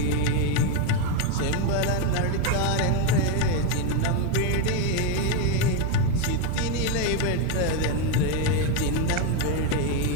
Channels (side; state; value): both; different; correlation 0.02